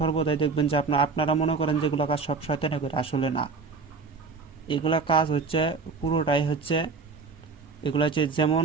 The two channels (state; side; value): quieter; left; 4.6 dB